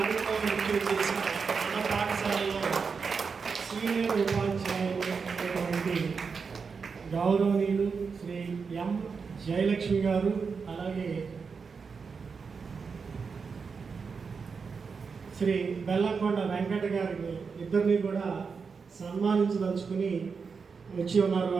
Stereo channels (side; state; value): left; quieter; 5.4 dB